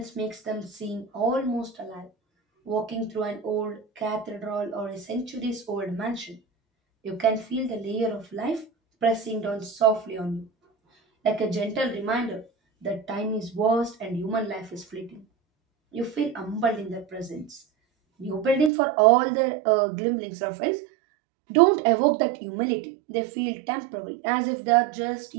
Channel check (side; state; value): left; drops out; at 18.7 s